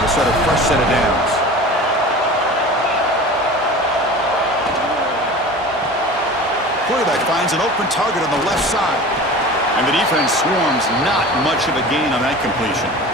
start a fresh set of downs. Quarterback finds an open target on the left side. And the defense swarms, not much of a gain on that completion.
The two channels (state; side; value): normal; both; correlation 0.37